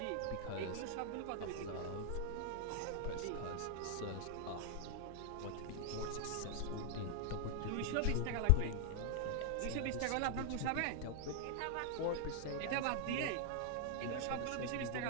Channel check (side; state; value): both; different; correlation 0.00